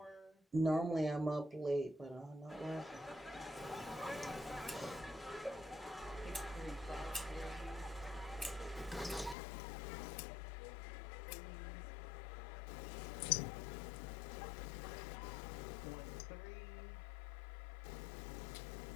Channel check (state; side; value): drops out; right; at 9.3 s